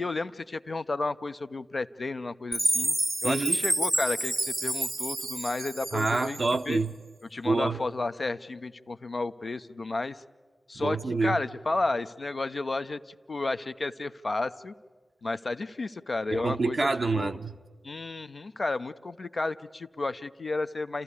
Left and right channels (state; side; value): normal; both; correlation 0.93